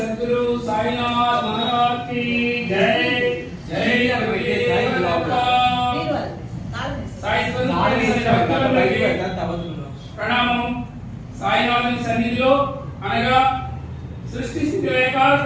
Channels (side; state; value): both; identical; correlation 1.00